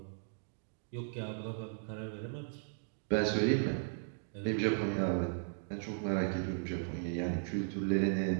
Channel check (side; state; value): left; silent; digital silence